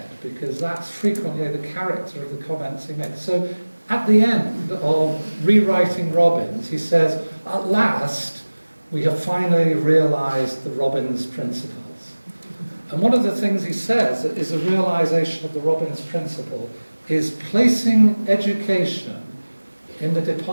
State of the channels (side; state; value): both; inverted; correlation -1.00